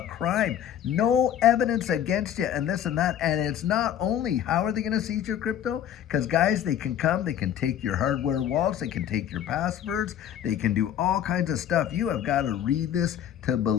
crime. No evidence against you and this and that. And it's not only how are they going to seize your crypto? Because, guys, they can come, they can take your hardware wallets, they can take your passwords, they can do all kinds of stuff. You have got to read this to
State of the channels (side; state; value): right; quieter; 10.1 dB